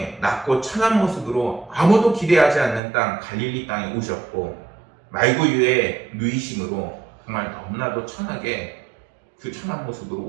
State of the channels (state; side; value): drops out; left; at 2.8 s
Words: 낮고 천한 모습으로 아무도 기대하지 않는 땅 갈릴리 땅에 오셨고, 말구유의 누이심으로 정말 너무나도 천하게 그 천한 모습으로